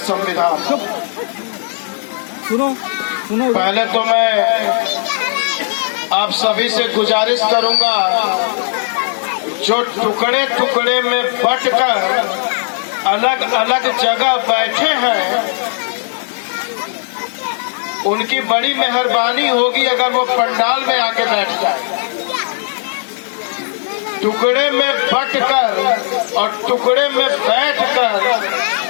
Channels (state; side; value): silent; right; 69 dB below the other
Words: संविधान। सुनो सुनो। पहले तो मैं आप सभी से गुजारिश करूंगा, जो टुकड़े टुकड़े में बंटकर अलग अलग जगह बैठे हैं, उनकी बड़ी मेहरबानी होगी अगर वो पंडाल में आके बैठ जाए। टुकड़े में बंटकर और टुकड़े में बैठकर